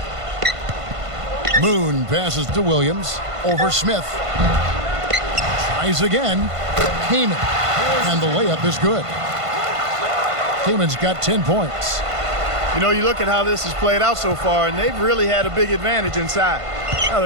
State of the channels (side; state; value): left; late; 1.5 ms